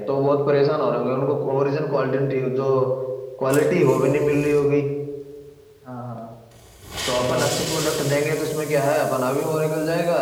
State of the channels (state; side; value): identical; both; correlation 1.00